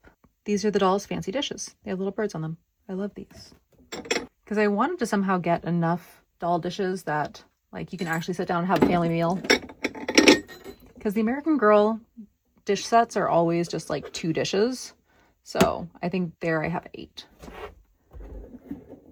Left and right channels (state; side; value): identical; both; correlation 1.00